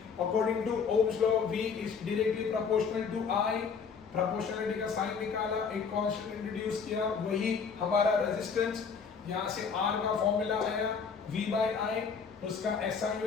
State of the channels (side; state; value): right; quieter; 5.9 dB